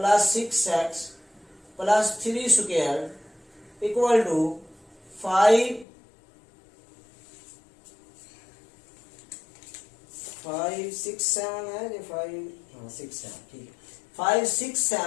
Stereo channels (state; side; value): drops out; right; at 5.9 s